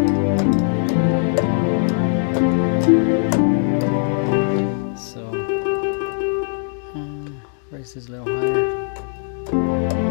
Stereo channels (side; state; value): right; silent; digital silence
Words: so raise this a little higher.